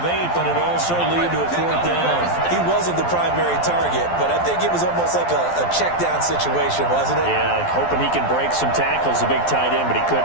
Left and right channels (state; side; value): late; right; 12 ms